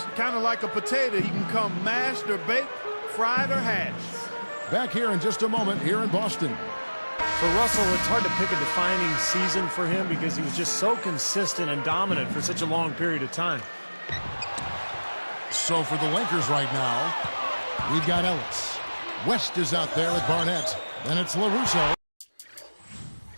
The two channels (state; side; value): inverted; both; correlation -1.00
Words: kind of like a potato. He can come mashed or baked, fried or hashed. Back here in just a moment here in Boston. For Russell, it's hard to pick a defining season for him because he was just so consistent and dominant for such a long period of time. So for the Lakers right now, we've got Ellis. West is out there with Barnett. Then it's LaRusso.